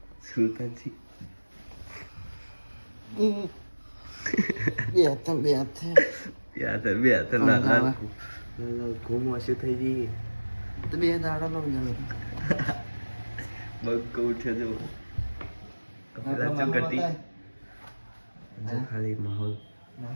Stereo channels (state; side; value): inverted; both; correlation -1.00